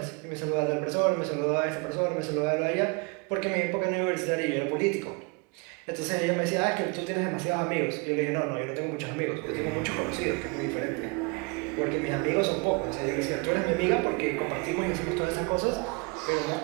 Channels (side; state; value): left; quieter; 30.2 dB